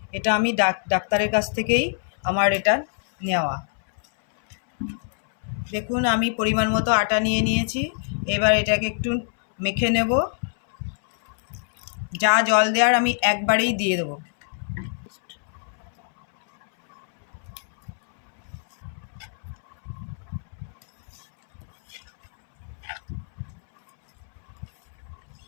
এটা আমি ডাক্তারের কাছ থেকেই আমার এটা নেওয়া। দেখুন, আমি পরিমাণ মতো আটা নিয়ে নিয়েছি। এবার এটাকে একটু মেখে নেব। যা জল দেওয়ার আমি একবারেই দিয়ে দেবো।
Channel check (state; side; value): silent; right; 62 dB below the other